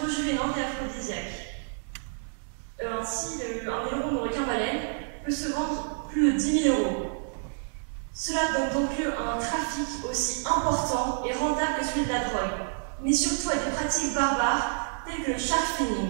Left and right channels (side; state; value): left; silent; digital silence